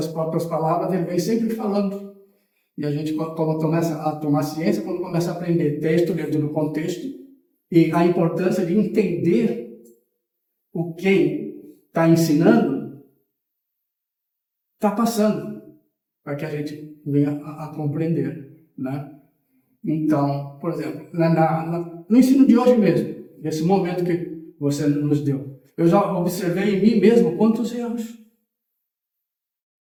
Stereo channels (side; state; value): both; identical; correlation 1.00